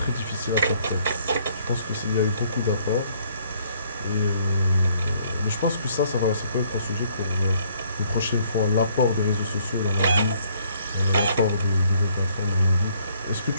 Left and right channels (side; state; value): both; inverted; correlation -0.65